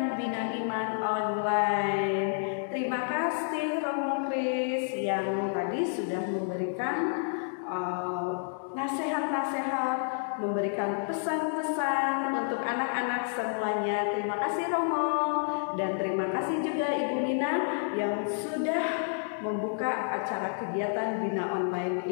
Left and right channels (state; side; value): silent; right; digital silence